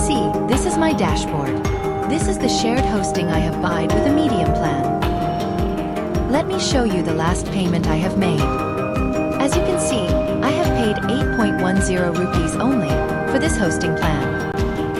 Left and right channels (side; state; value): both; identical; correlation 1.00